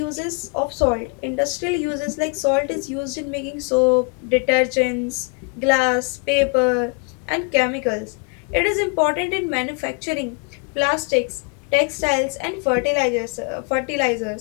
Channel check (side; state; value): right; quieter; 35.7 dB